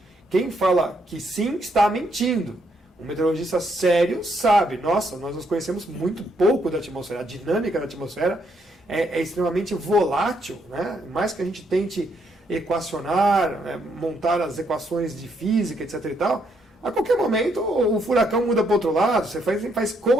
Quem fala que sim está mentindo. Um meteorologista sério sabe, nossa, nós conhecemos muito pouco da atmosfera, a dinâmica da atmosfera é extremamente volátil, né? Mais que a gente tente equacionar, montar as equações de física, etc. e tal, a qualquer momento o furacão muda para o outro lado, você faz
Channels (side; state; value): both; normal; correlation 0.74